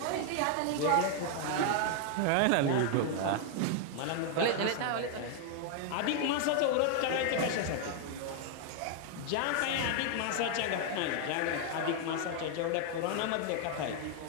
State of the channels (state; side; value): different; both; correlation 0.00